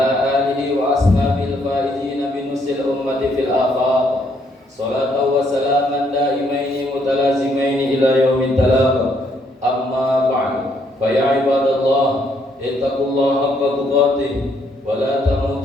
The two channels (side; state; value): both; normal; correlation 0.71